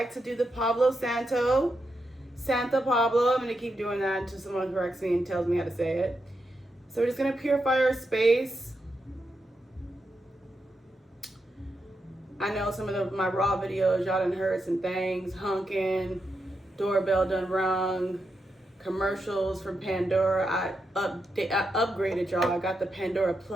to do the Santa Pablo. I'm gonna keep doing that until someone corrects me and tells me how to say it. So we're just gonna purify our space. I know some of my raw videos, y'all done heard some things, honking, doorbell done rung, commercials from Pandora. I upgraded, y'all. I got the Pandora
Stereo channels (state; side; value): normal; both; correlation 0.85